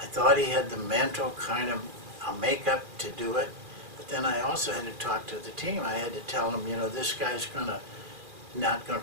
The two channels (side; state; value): left; late; 2.4 ms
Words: I thought he had the mental kind of makeup to do it, but then I also had to talk to the team. I had to tell them, you know, this guy's not going